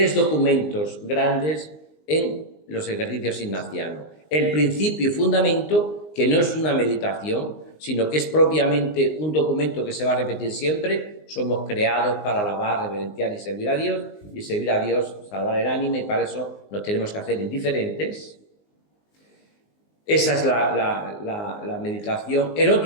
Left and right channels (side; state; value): right; late; 19 ms